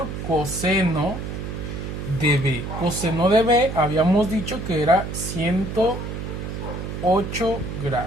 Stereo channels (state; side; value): noise; right; hum, 6 dB below the sound